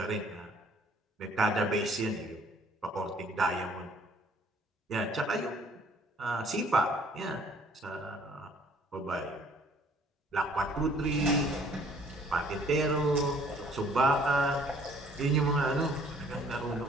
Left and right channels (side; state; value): both; normal; correlation 0.59